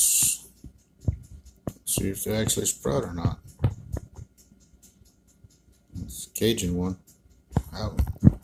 See if they actually sprout or not. It's a Cajun one. Out.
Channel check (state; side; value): identical; both; correlation 1.00